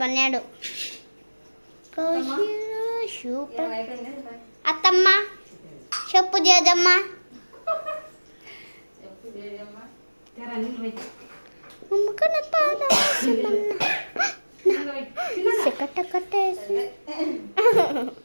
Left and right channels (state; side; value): inverted; both; correlation -1.00